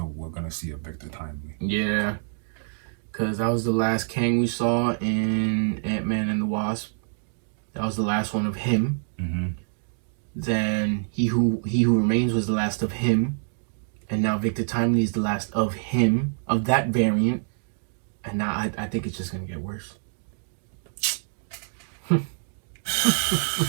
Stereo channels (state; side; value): silent; left; digital silence